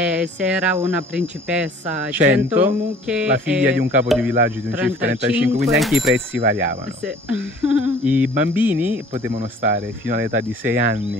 era una principessa, 100 mucche, la figlia di un capo di villaggio di un CIF 35, quindi anche i prezzi variavano. Sì. I bambini potevano stare fino all'età di 6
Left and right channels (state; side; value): normal; both; correlation 0.50